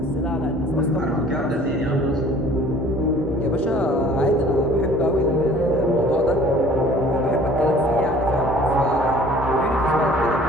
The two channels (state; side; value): normal; both; correlation 0.51